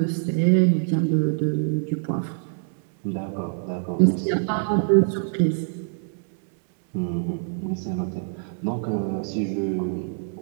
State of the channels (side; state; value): left; silent; digital silence